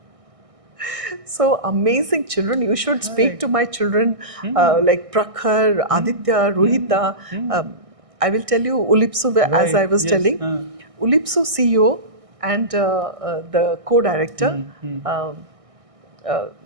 So amazing children. You should speak to my children like Prakhar, Aditya, Rohita. I will tell you Ulipsu, as I was telling. Ulipsu CEO and the co-director,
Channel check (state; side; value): late; left; 1.6 ms